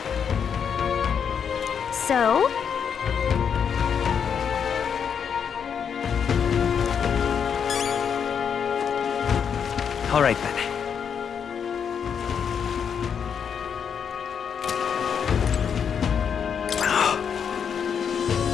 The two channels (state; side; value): quieter; right; 7.3 dB